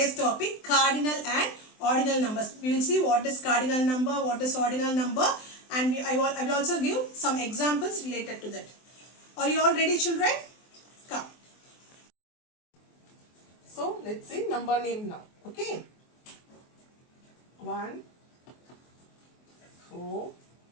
topic, cardinal and ordinal numbers. We will see what is cardinal number, what is ordinal number, and I will also give some examples related to that. Are you all ready, children? Come. So let's see number name now. Okay. 1, 4,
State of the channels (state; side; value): late; right; 24 ms